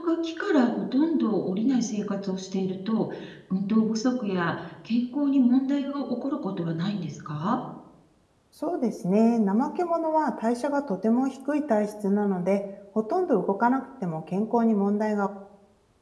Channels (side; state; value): both; identical; correlation 1.00